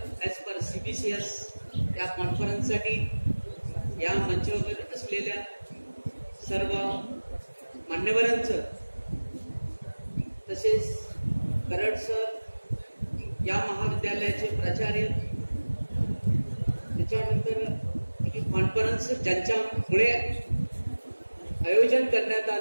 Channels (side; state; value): both; inverted; correlation -1.00